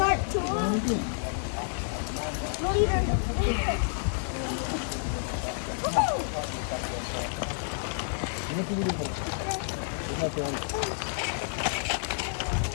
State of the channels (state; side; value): silent; right; digital silence